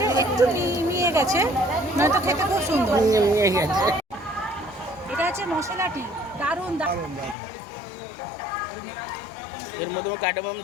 একটু মিয়ে গেছে, নয়তো খেতে খুব সুন্দর। এটা হচ্ছে মশলাটি, দারুণ। এর মধ্যে কার্ডামাম,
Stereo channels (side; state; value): right; drops out; at 7.4 s